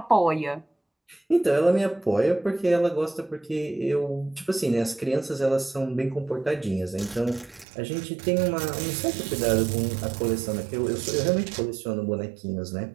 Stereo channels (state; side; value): drops out; left; at 7.7 s